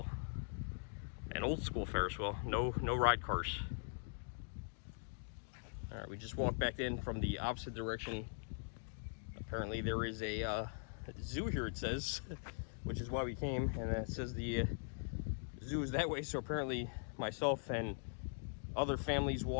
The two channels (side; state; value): right; silent; digital silence